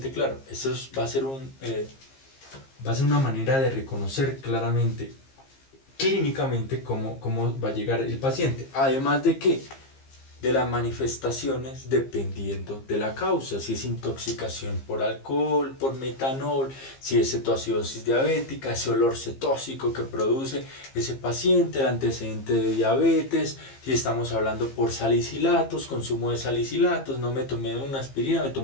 claro. Eso va a ser una manera de reconocer claramente, clínicamente, cómo va a llegar el paciente. Además de que de las manifestaciones dependiendo de la causa, si es intoxicación por alcohol, por metanol, si es cetoacidosis diabética, ese olor cetóxico que produce ese paciente, el antecedente de diabetes, si estamos hablando por salicilatos, consumo de salicilatos, no me tomé una aspirina, me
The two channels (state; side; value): late; right; 15 ms